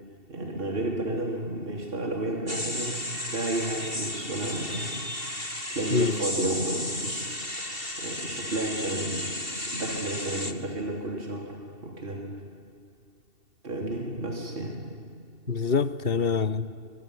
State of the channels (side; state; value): left; late; 2.7 ms